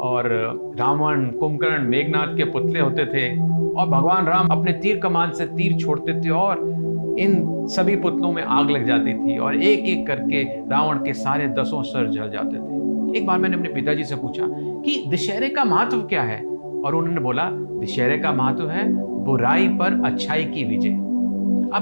रावण, कुंभकर्ण, मेघनाथ के पुतले होते थे और भगवान राम अपने तीर कमान से तीर छोड़ते थे और इन सभी पुतलों में आग लग जाती थी और एक एक करके रावण के सारे 10 सर जल जाते थे। एक बार मैंने अपने पिताजी से पूछा कि दशहरे का महत्व क्या है, और उन्होंने बोला दशहरे का महत्व है बुराई पर अच्छाई की विजय।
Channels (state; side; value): inverted; both; correlation -1.00